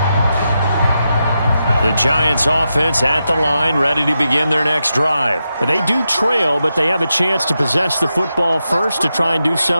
The Giants offense at the line, ready to begin their next drive. They do trail, but they have a chance to possess the football first to try and do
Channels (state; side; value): inverted; both; correlation -0.87